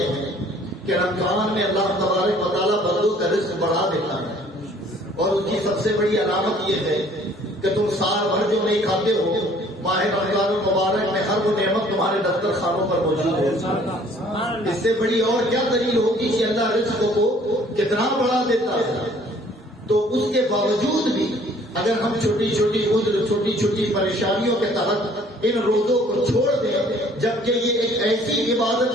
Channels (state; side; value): normal; both; correlation 0.57